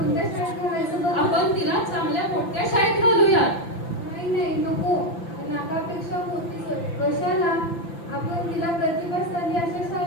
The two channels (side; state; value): right; late; 5.9 ms